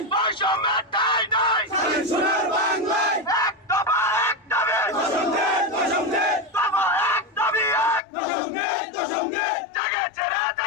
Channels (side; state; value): right; drops out; at 8.0 s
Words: নাই, এক দফা এক দাবি, দফা এক দাবি এক, জেগেছে রে